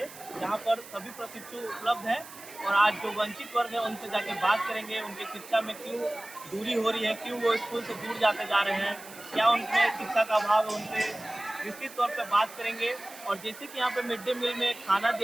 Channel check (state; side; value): noise; right; hiss, 17 dB below the sound